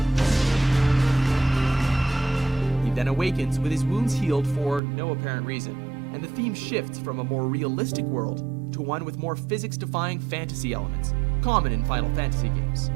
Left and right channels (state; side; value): drops out; left; at 4.8 s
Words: He then awakens with his wounds healed for no apparent reason, and the theme shifts from a more realistic world to one with more physics-defying fantasy elements, common in Final Fantasy games.